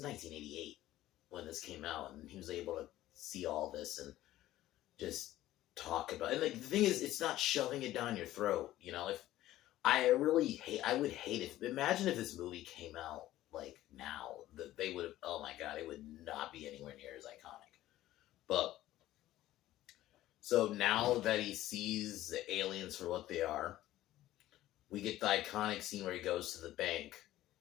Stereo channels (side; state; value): right; quieter; 14.8 dB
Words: 1988 when this came out, and he was able to see all this and just talk about it. And like the thing is, it's not shoving it down your throat. If I would hate imagine if this movie came out like now, that they would have, oh my god, it would not be anywhere near as iconic. But so now that he sees the aliens for what they are, we get the iconic scene where he goes to the bank